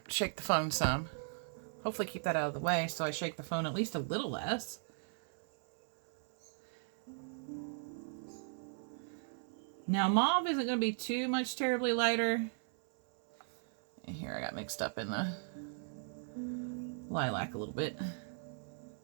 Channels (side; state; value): left; silent; 53 dB below the other